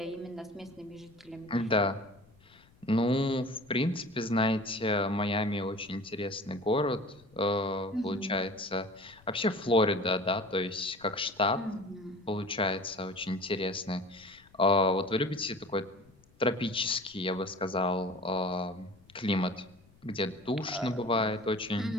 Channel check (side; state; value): left; noise; rumble, 28 dB below the sound